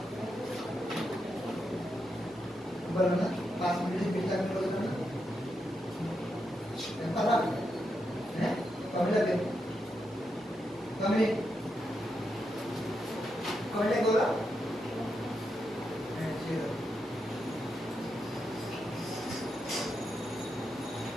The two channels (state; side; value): normal; both; correlation 0.84